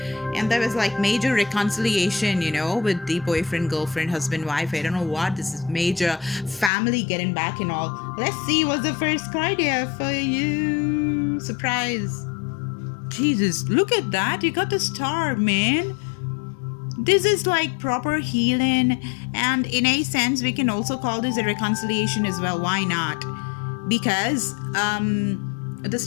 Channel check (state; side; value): drops out; right; at 6.7 s